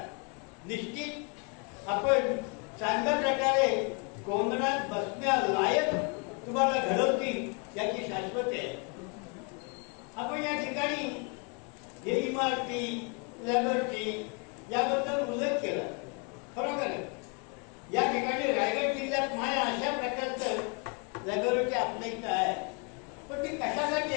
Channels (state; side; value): quieter; right; 34.0 dB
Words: निश्चित आपण चांगल्या प्रकारे कोंदणात बसण्यालायक तुम्हाला घडवतील याची शाश्वती आहे. आपण या ठिकाणी हे इमारती लॅबोरेटरी याबद्दल उल्लेख केला. खरोखर या ठिकाणी रायगड जिल्ह्यात माया अशा प्रकारचं लॅबोरेटरी आपल्या इथं आहे. पण ती कशासाठी